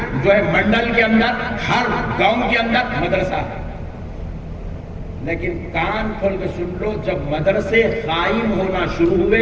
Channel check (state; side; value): identical; both; correlation 1.00